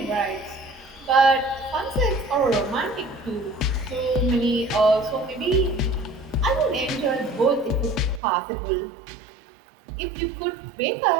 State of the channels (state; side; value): drops out; left; at 8.2 s